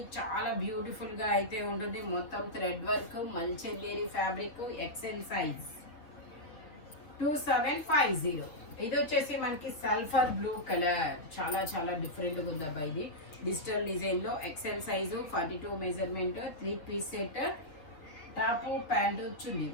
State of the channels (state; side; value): late; right; 6.5 ms